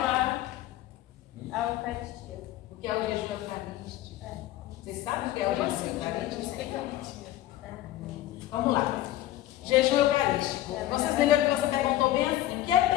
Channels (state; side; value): quieter; right; 14.3 dB